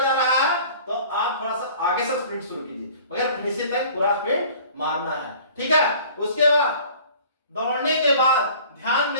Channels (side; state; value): both; inverted; correlation -0.48